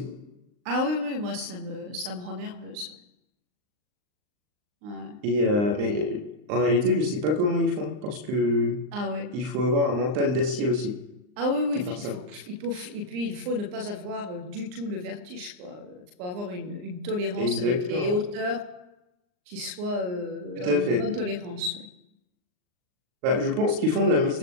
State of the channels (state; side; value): late; left; 39 ms